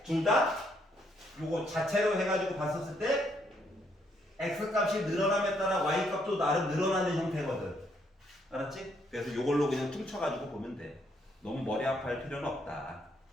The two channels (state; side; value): normal; both; correlation 0.72